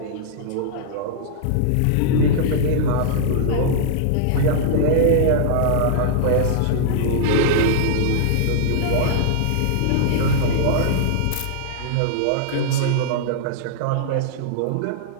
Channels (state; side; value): different; both; correlation -0.01